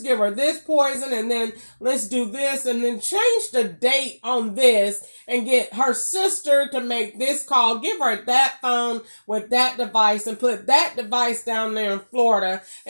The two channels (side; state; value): both; inverted; correlation -1.00